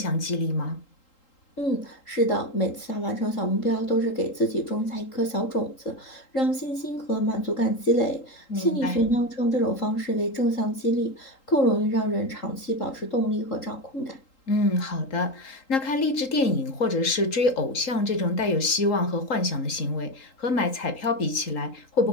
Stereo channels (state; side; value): late; right; 3.8 ms